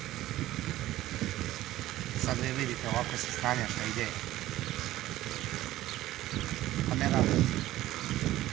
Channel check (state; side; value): quieter; left; 15.2 dB